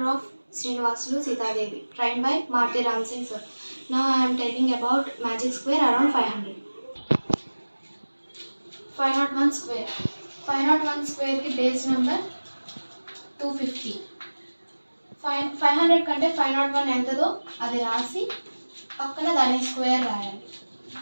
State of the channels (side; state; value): both; inverted; correlation -1.00